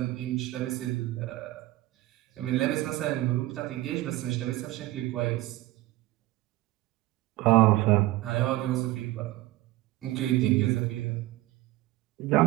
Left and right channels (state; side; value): quieter; left; 17.4 dB